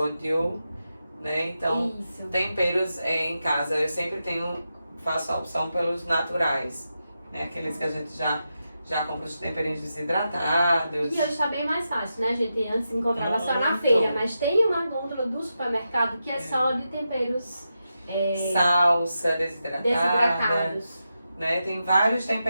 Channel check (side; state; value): both; inverted; correlation -0.88